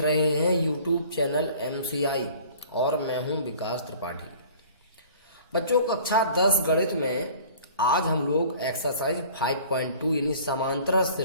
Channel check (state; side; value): inverted; both; correlation -0.48